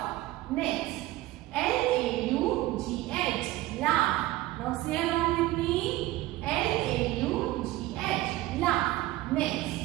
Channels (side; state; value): left; quieter; 16.9 dB